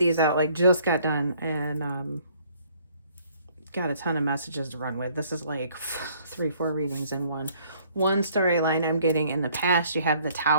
out, like just got done, and got a ton of messages to run with. This is like 3-4 readings in one. One storyline I'm getting: in the past, you have the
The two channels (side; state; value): both; inverted; correlation -0.61